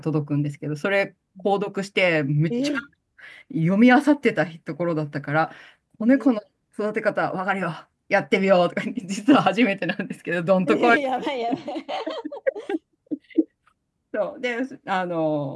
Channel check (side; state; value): both; identical; correlation 1.00